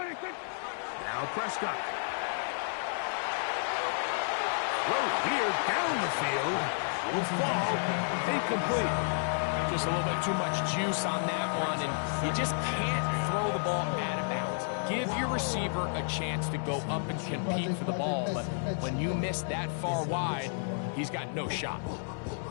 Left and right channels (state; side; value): silent; right; 57 dB below the other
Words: Now Prescott. Throw here down the field. Will fall incomplete. Just a little bit too much juice on that one, and you just can't throw the ball out of bounds. Give your receiver a chance to go up and compete for the ball, but when you miss that far wide, he's got no shot.